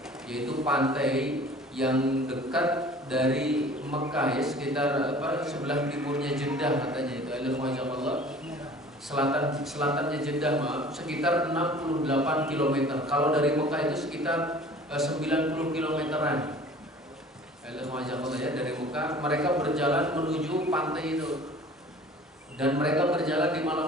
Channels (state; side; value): normal; both; correlation 0.46